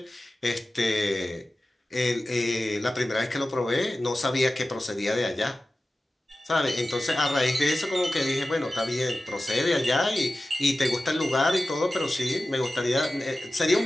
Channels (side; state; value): both; normal; correlation 0.95